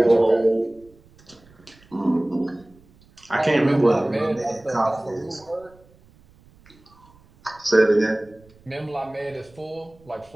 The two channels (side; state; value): right; noise; rumble, 28 dB below the sound